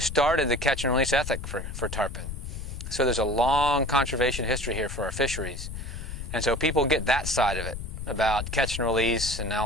started the catch and release ethic for tarpon. So there's a long conservation history here for our fisheries. And so people get that side of it, about catch and release and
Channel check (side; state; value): left; noise; rumble, 7 dB below the sound